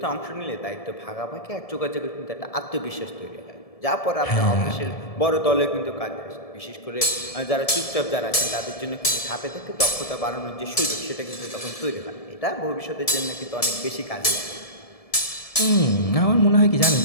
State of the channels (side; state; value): right; late; 1.7 ms